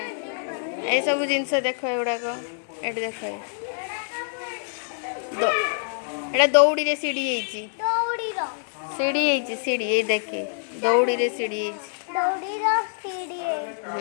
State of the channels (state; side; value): silent; right; digital silence